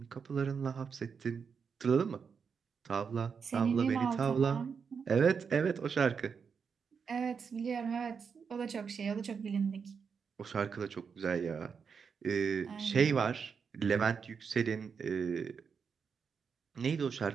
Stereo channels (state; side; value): quieter; left; 6.1 dB